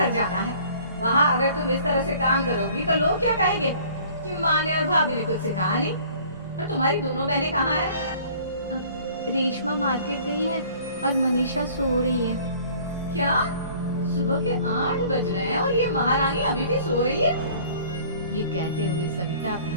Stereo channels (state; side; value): inverted; both; correlation -0.52